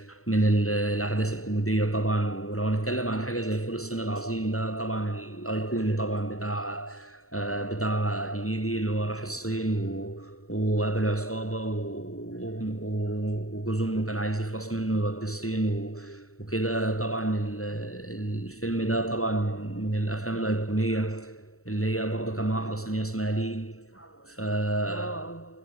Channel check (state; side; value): late; right; 0.64 ms